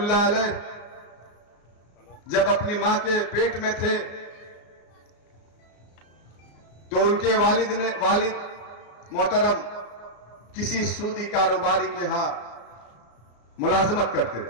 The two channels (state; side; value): late; right; 34 ms